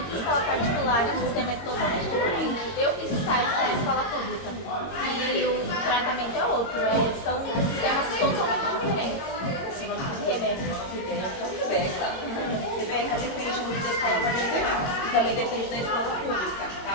em escola particular e o sistema é totalmente diferente. Eu fiz estágio na escola pública e o tratamento é outro, são sistemas totalmente diferentes. Rebeca depende muito da escola particular e também depende da escola pública,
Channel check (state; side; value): late; right; 22 ms